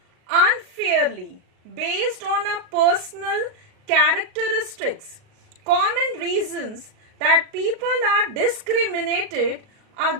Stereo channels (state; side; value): late; left; 38 ms